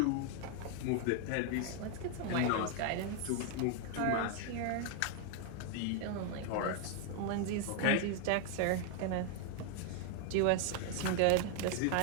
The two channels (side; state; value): both; different; correlation 0.00